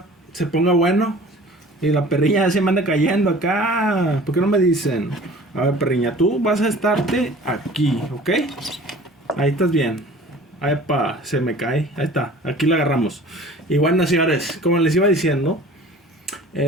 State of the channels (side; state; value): both; normal; correlation 0.45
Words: se ponga bueno. Y la perriña ya se me anda cayendo acá. ¿Por qué no me dicen? A ver, perriña, tú vas a estarte aquí, ¿ok? Ahí estás bien. Ay, se me cae. Ahí está, aquí la agarramos. Y bueno, señores, como les iba diciendo,